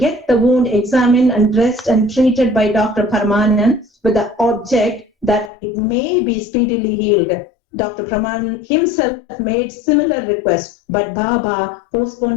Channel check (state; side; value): drops out; right; at 5.5 s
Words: the wound examined and dressed and treated by Dr. Parayanam with the object that it may be speedily healed. Dr. Parayanam himself made similar requests, but Baba